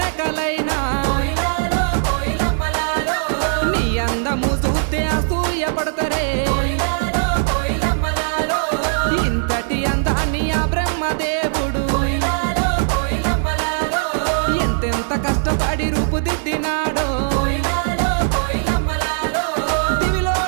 నీ అందము చూస్తే అసూయ పడతారే ఇంతటి అందాన్ని ఆ బ్రహ్మదేవుడు ఎంతెంత కష్టపడి రూపుదిద్దినాడో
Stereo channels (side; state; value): left; silent; digital silence